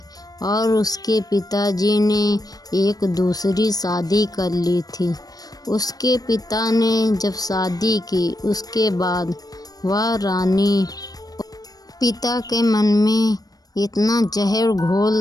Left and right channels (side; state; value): right; late; 0.18 ms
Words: और उसके पिताजी ने एक दूसरी शादी कर ली थी। उसके पिता ने जब शादी की, उसके बाद वह रानी पिता के मन में इतना जहर